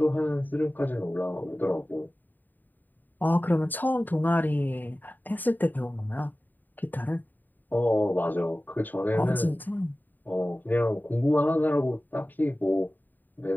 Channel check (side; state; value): right; late; 0.088 ms